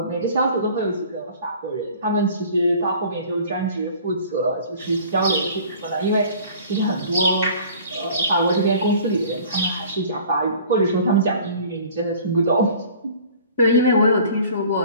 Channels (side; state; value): both; inverted; correlation -0.48